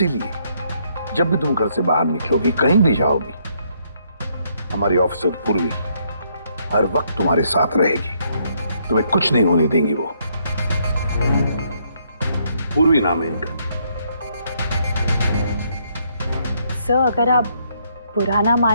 जब भी तुम घर से बाहर निकलोगी, कहीं भी जाओगी, हमारी ऑफिसर पूर्वी हर वक्त तुम्हारे साथ रहेगी। तुम्हें कुछ नहीं होने देंगी वो। पूर्वी नाम है इनका। सर, अगर आप बुरा ना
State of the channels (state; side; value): inverted; both; correlation -0.72